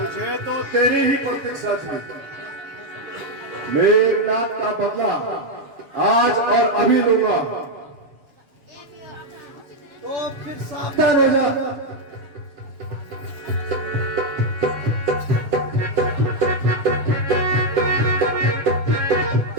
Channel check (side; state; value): left; late; 7.0 ms